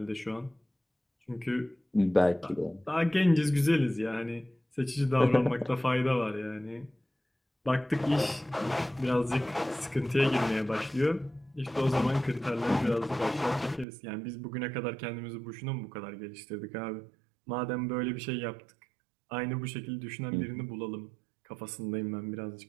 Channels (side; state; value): left; drops out; at 13.9 s